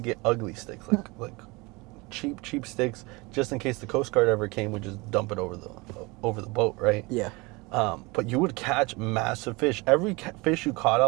ugly sticks, like cheap sticks, just in case the Coast Guard ever came, we'd just dump it over the boat, right? Yeah. But you would catch massive fish. Every fish you caught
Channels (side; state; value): left; quieter; 25.1 dB